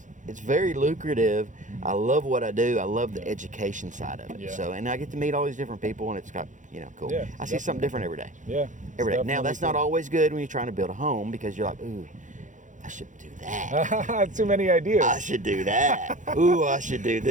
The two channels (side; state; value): left; late; 0.36 ms